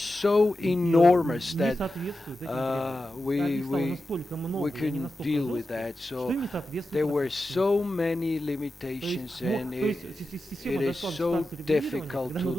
enormous that we couldn't deal with that. So there were so many limitations, and it is so difficult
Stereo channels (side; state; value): both; normal; correlation 0.91